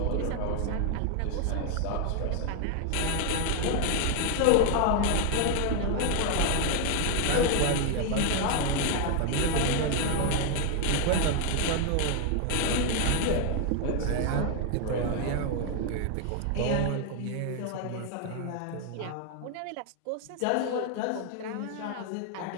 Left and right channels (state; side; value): different; both; correlation 0.00